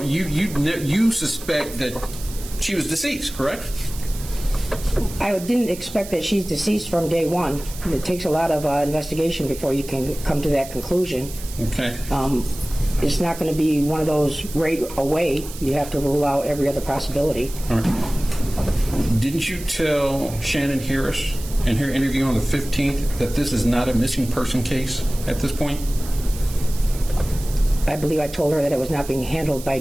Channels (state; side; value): noise; right; hiss, 14 dB below the sound